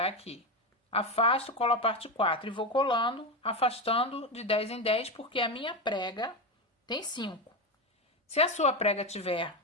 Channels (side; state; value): both; normal; correlation 0.14